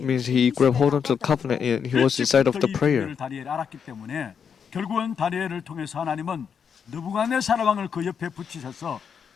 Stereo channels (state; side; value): quieter; right; 7.0 dB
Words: means he grabbed hold on to the covenant and he was inside of the prayer. 다니엘이 알았기 때문에 결국은 다니엘을 통해서 하나님은 느부갓네살 왕을 그 옆에 붙이셔서